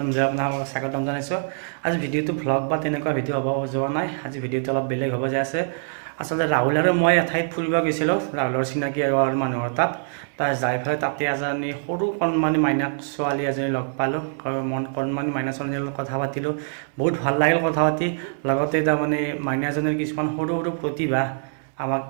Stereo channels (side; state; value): left; silent; 63 dB below the other